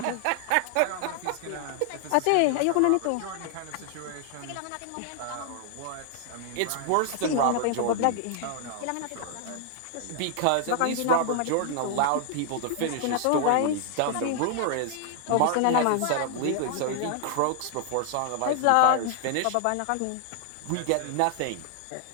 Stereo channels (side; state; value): both; different; correlation 0.00